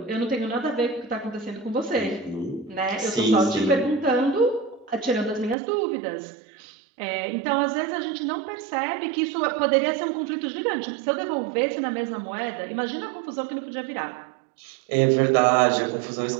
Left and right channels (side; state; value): left; drops out; at 5.6 s